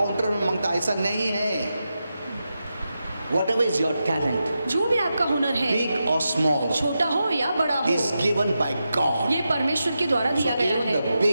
में मांगता, ऐसा नहीं है। Whatever is your talent, जो भी आपका हुनर है, big or small, छोटा हो या बड़ा हो, is given by God. ये परमेश्वर के द्वारा So दिया गया even है। the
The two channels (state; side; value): inverted; both; correlation -0.89